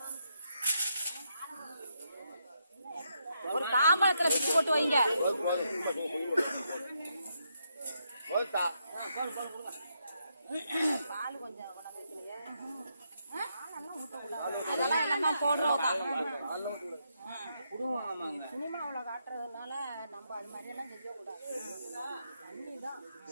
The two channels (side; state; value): both; inverted; correlation -0.79